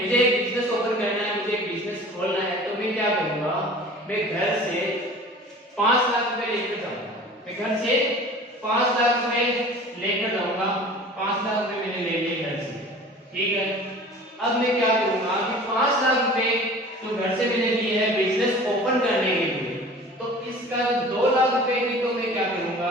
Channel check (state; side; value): normal; both; correlation 0.42